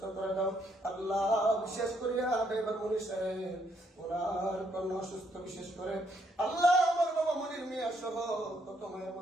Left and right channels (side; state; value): both; normal; correlation 0.72